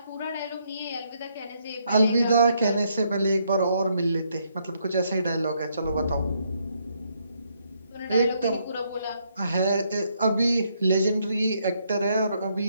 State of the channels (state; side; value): inverted; both; correlation -0.73